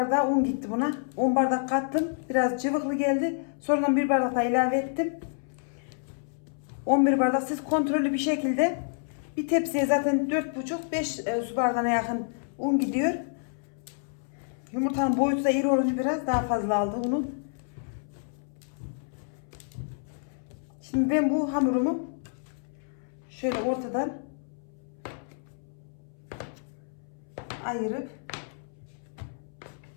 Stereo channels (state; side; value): silent; right; 59 dB below the other